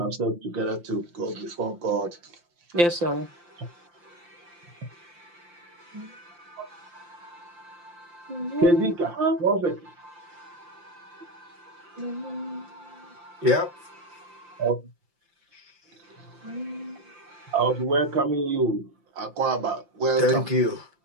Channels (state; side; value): late; left; 5.8 ms